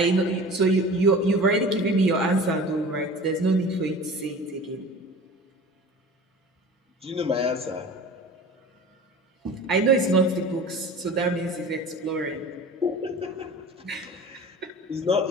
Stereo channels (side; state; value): both; normal; correlation 0.39